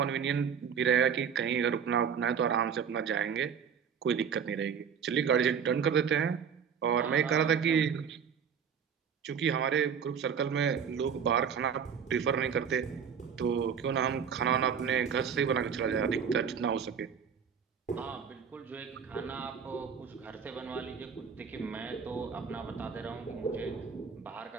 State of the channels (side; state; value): left; quieter; 7.1 dB